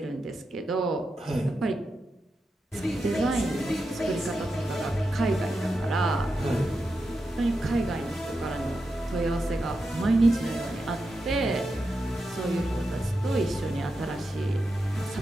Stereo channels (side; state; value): both; normal; correlation 0.88